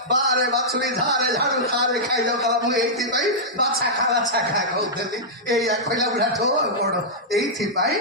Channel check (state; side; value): normal; both; correlation -0.11